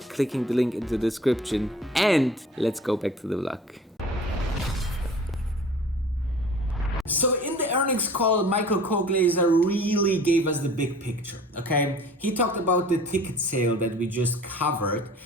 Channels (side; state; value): both; normal; correlation 0.46